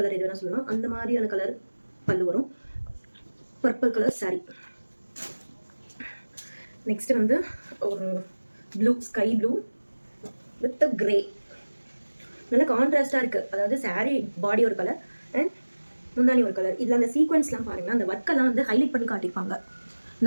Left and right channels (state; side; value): inverted; both; correlation -1.00